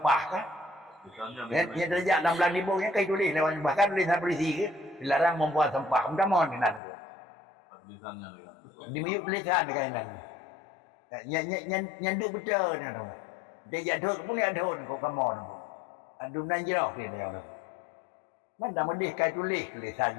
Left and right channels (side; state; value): right; drops out; at 6.8 s